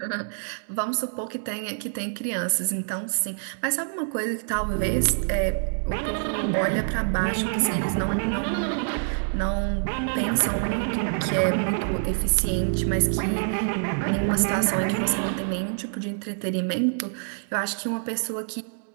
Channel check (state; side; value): silent; left; 61 dB below the other